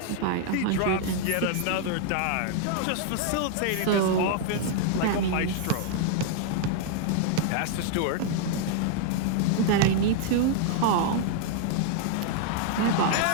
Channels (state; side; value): different; both; correlation 0.00